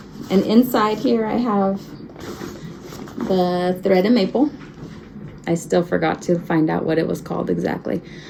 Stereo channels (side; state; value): both; identical; correlation 1.00